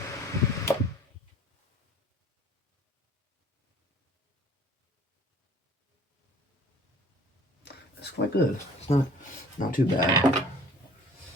It's quite good. It's not too bad.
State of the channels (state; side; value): normal; both; correlation 0.50